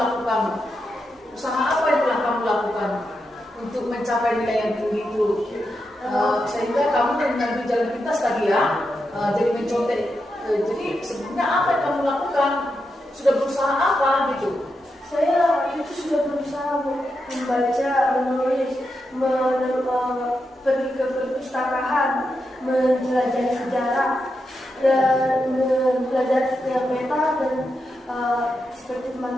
Usaha apa yang telah kamu lakukan untuk mencapai nilai yang tinggi itu? Sehingga kamu mengambil jalan pintas tadi ya, jadi mencontek. Jadi sebenarnya apa yang kamu lakukan? Sudah berusaha apa gitu? Saya itu sudah berusaha membaca, menulis, pergi ke perpustakaan, mempelajari sejarah, dan belajar setiap peta dan seperti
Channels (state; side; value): normal; both; correlation 0.86